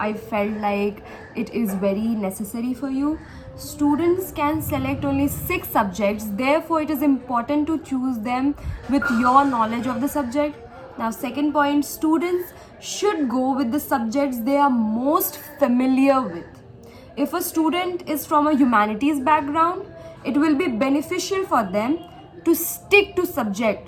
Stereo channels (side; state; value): both; identical; correlation 1.00